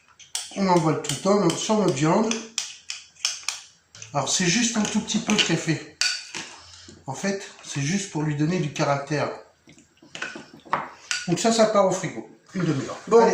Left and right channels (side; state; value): both; identical; correlation 1.00